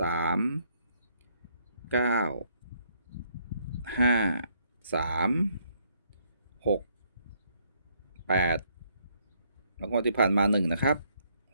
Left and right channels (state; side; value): inverted; both; correlation -0.70